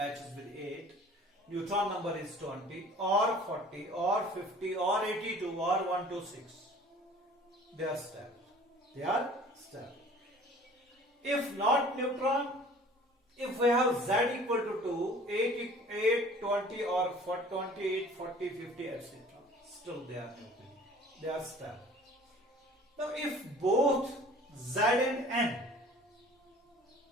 with 8, neutron number is 20 or 40 or 50 or 82 or 126, they are stable. They are stable. If not neutron, if we have z equal to 2, 8, 20 or 28, 40, 50, etc., still they are nuclear. They are stable. Now if both z and n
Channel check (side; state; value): both; normal; correlation 0.48